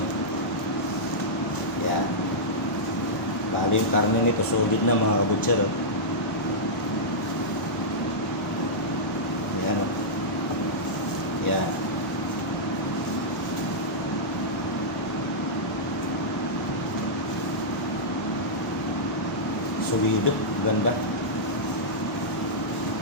Yan. Bali yung karne nito solid na mga kabutser. Yan o. Yan. Solido. Ganda.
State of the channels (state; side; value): normal; both; correlation -0.12